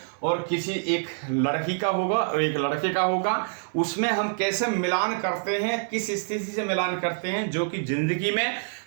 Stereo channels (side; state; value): left; silent; digital silence